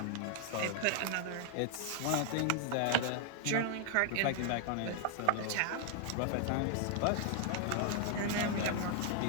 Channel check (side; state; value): both; different; correlation 0.00